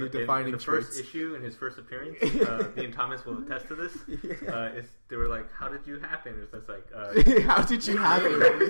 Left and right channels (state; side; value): inverted; both; correlation -1.00